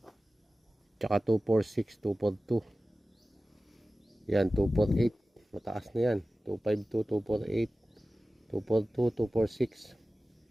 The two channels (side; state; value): both; normal; correlation 0.96